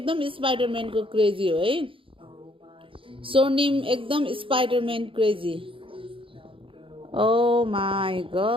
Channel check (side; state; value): left; late; 0.25 ms